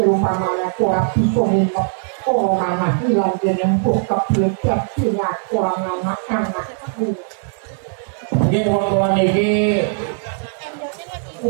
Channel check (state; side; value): silent; left; 66 dB below the other